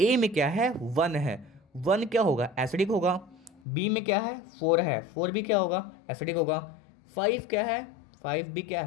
में क्या है, 1 है, 1 क्या होगा, एसिडिक होगा। बी में क्या है, 4 है, 4 भी क्या होगा, एसिडिक होगा। 5 क्या है, 5 भी क्या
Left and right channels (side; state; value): right; drops out; at 3.6 s